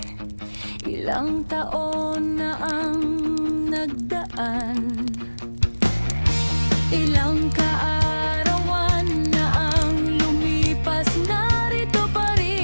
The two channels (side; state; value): both; inverted; correlation -1.00